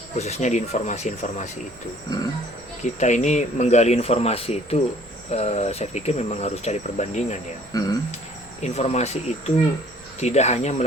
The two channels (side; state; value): right; noise; rumble, 24 dB below the sound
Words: Khususnya di informasi-informasi itu. Kita ini menggali informasi itu, saya pikir memang harus cari perbandingan ya. Informasi itu tidak hanya